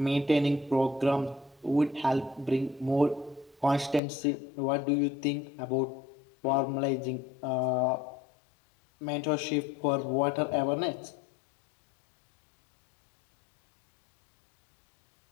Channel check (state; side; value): drops out; right; at 4.0 s